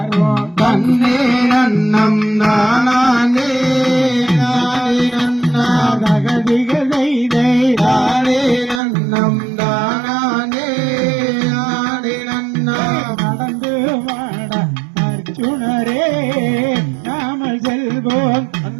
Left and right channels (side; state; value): left; drops out; at 8.8 s